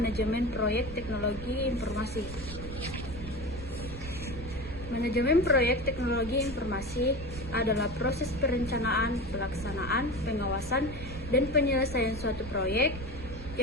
Proyek Teknologi Informasi. Manajemen proyek teknologi informasi adalah proses perencanaan, pelaksanaan, pengawasan, dan penyelesaian suatu proyek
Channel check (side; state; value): right; noise; rumble, 10 dB below the sound